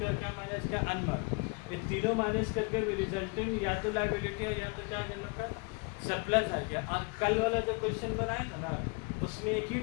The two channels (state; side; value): quieter; right; 31.2 dB